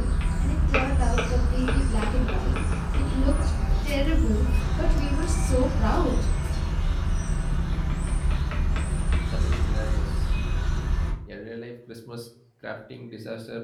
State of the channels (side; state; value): both; identical; correlation 1.00